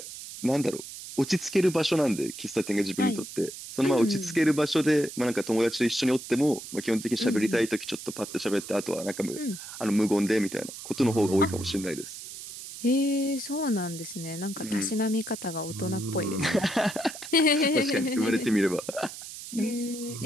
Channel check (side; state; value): right; noise; hiss, 12 dB below the sound